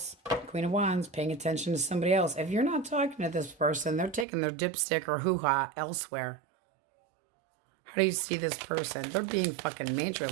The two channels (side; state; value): left; drops out; at 4.2 s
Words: Queen of Wands, paying attention to somebody else. If you're not talking to this person, they're taking their dipstick or hoo-ha elsewhere. How do you see this person? They're being fucking